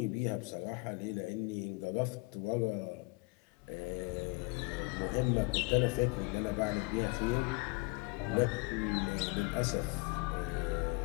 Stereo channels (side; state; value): right; quieter; 26.5 dB